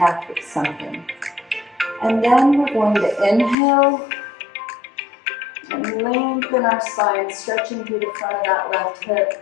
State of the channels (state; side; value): drops out; right; at 3.6 s